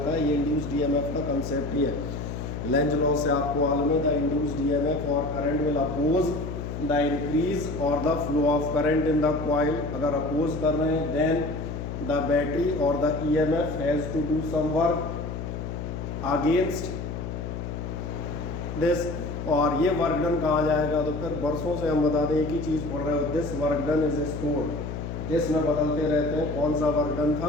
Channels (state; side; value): noise; left; hum, 6 dB below the sound